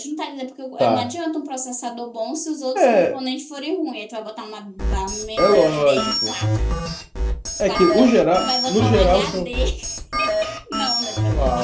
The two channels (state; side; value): identical; both; correlation 1.00